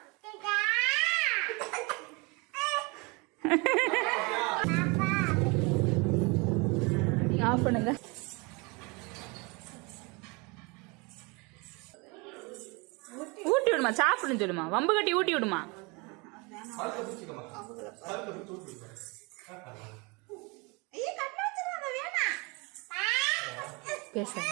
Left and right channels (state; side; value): quieter; left; 28.3 dB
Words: ஆஃப் பண்ணுங்க. ஊட்டி விடுமா, சாப்பிடுன்னு சொல்லுமா, வம்பு கட்டி ஊட்டி விடுமா. பேச